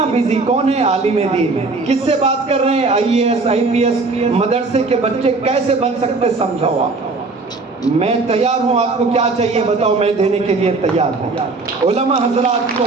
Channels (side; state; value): left; quieter; 3.8 dB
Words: بیزی کون ہے عالم دین, کس سے بات کر رہے ہیں؟ IAS IPS مدرسے کے بچے کیسے بن سکتے سمجھاؤ آپ. میں تیار ہوں, آپ کو کیا چاہیے بتاؤ, میں دینے کے لیے تیار ہوں. علماء حضرات کو